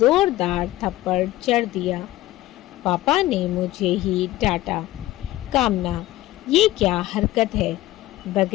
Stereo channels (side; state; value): right; quieter; 16.1 dB